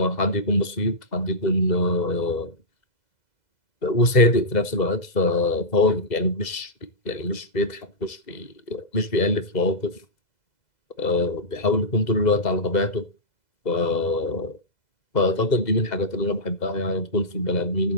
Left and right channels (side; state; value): right; late; 2.0 ms